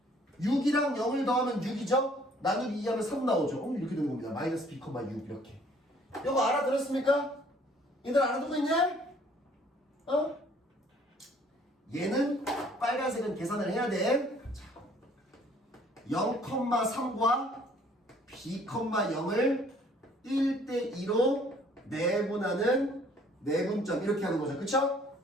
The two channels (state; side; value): normal; both; correlation 0.59